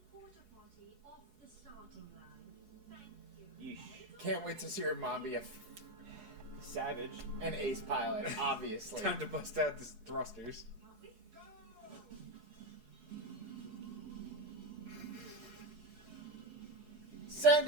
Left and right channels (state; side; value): late; left; 10 ms